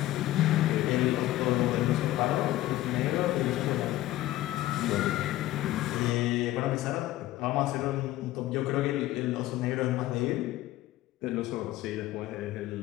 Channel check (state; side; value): quieter; right; 15.5 dB